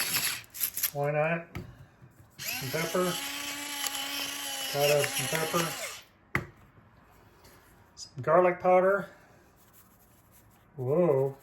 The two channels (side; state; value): both; identical; correlation 1.00